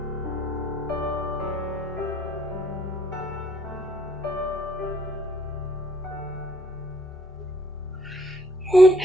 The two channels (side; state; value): both; normal; correlation 0.66